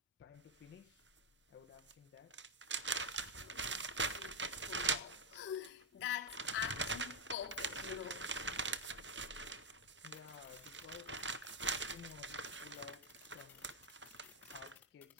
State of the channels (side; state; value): both; normal; correlation 0.02